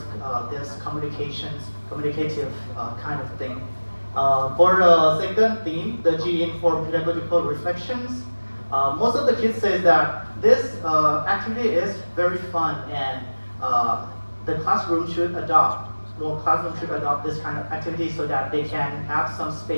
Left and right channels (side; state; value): both; inverted; correlation -1.00